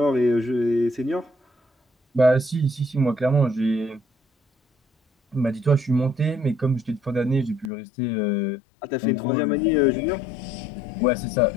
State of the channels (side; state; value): right; drops out; at 7.7 s